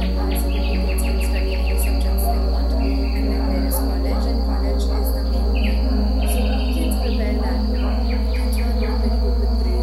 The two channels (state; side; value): identical; both; correlation 1.00